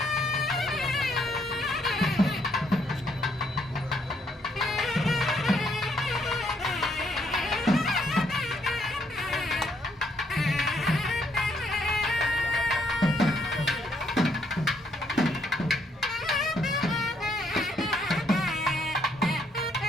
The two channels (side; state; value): both; normal; correlation 0.72